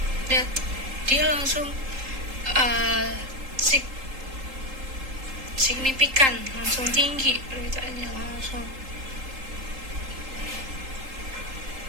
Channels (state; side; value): late; left; 3.8 ms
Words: Lihat, dia langsung signifikan, langsung tinggi permintaannya langsung.